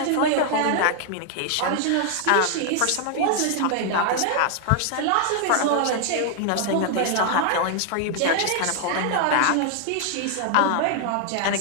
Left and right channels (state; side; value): different; both; correlation 0.00